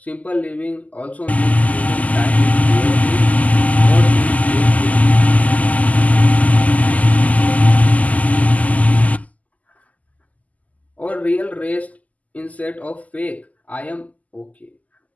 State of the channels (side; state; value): right; late; 0.074 ms